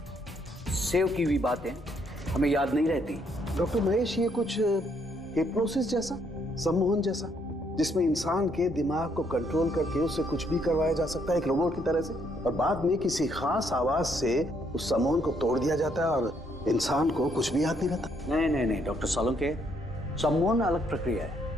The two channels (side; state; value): both; normal; correlation 0.71